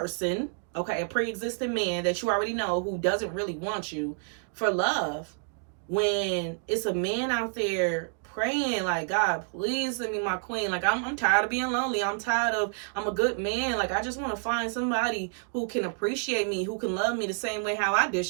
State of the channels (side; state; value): left; silent; 58 dB below the other